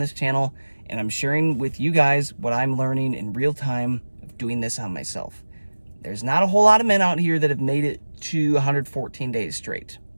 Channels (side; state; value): both; inverted; correlation -1.00